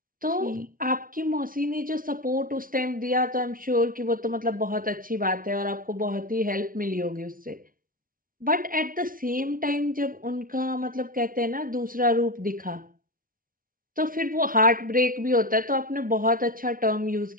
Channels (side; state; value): left; late; 0.41 ms